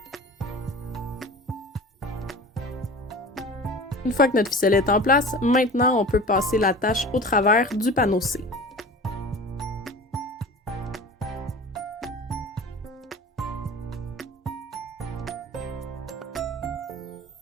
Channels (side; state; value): both; normal; correlation 0.37